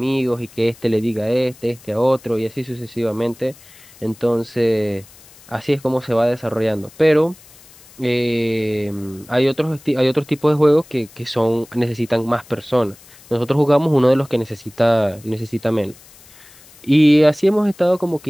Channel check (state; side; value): noise; left; hiss, 24 dB below the sound